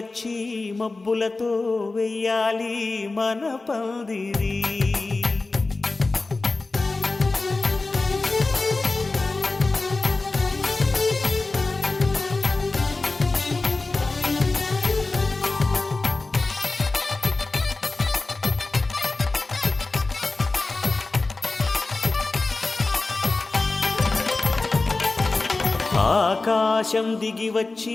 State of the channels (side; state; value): right; quieter; 3.4 dB